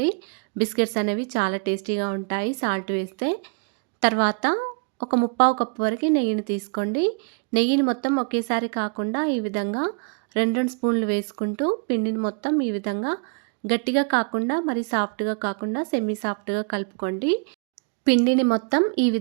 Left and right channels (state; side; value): quieter; left; 36.2 dB